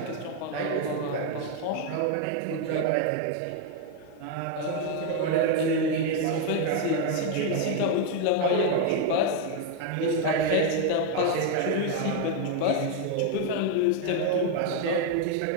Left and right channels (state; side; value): different; both; correlation 0.01